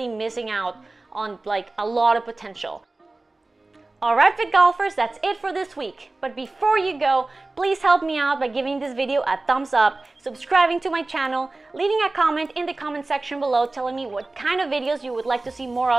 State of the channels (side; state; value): left; quieter; 3.1 dB